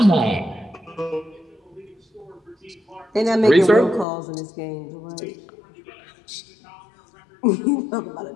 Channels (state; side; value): drops out; right; at 4.0 s